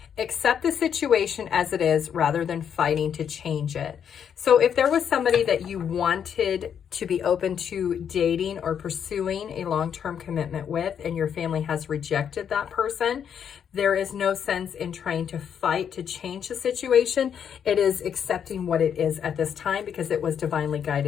Accept the situation as it is rather than fighting to change it. So if there was somebody that you wanted to be open to dating or pursuing a long-term commitment with, and your family has rejected that person, there is no sense in trying to fight to change the situation. It is accepting what it is at this time, because it was divinely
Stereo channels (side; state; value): right; quieter; 8.2 dB